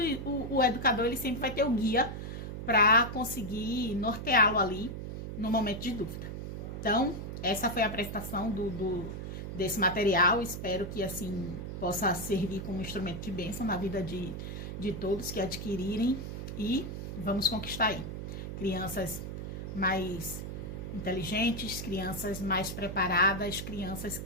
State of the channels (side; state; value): right; noise; hum, 6 dB below the sound